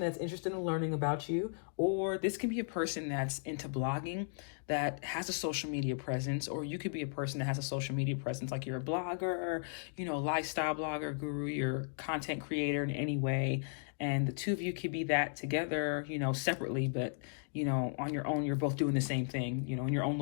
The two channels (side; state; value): right; silent; digital silence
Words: that's interested in learning about you, or this can be a person that's into blogging, that has a social media presence, or you could be a person that has a social media presence, like you're a blogger, lifestyle blogger, guru, you're content creator in any way, and the two of you could be that together, separately, but on your own, you're both doing the same thing, in your own